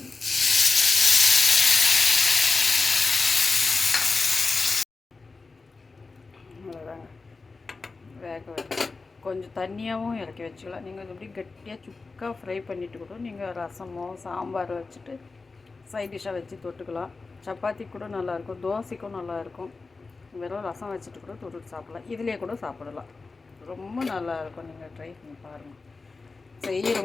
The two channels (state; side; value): quieter; right; 4.0 dB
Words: அவ்வளோதாங்க. வேக வச்சு கொஞ்சம் தண்ணியாகவும் இறக்கி வச்சுக்கலாம். நீங்கள் எப்படி கட்டியாக சுக்காக ஃப்ரை பண்ணிவிட்டு கூட நீங்கள் ரசமோ சாம்பார் வச்சுட்டு சைட் டிஷ்ஷாக வச்சு தொட்டுக்கலாம். சப்பாத்தி கூட நல்லாயிருக்கும், தோசைக்கும் நல்லாயிருக்கும். வெறும் ரசம் வச்சுட்டு கூட தொட்டுட்டு சாப்பிட்லாம். இதிலே கூட சாப்பிடலாம். ரொம்ப நல்லாயிருக்கும். நீங்கள் ட்ரை பண்ணி பாருங்கள்.